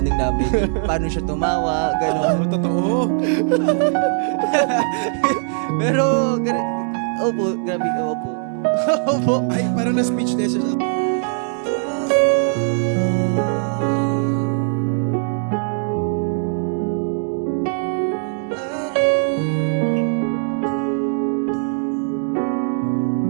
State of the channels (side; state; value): left; silent; digital silence